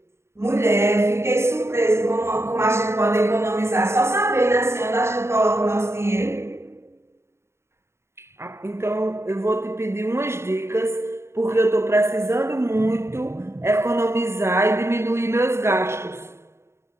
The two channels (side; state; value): left; late; 0.13 ms